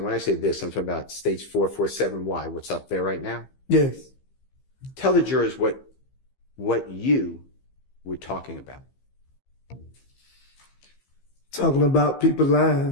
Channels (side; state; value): right; late; 15 ms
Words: when I say this, I'm talking about states 447Y, what's up there right now? Yes. Tell the jurors what you were talking about. Talking about people